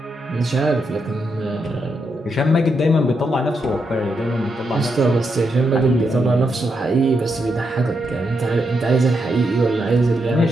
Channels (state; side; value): normal; both; correlation 0.82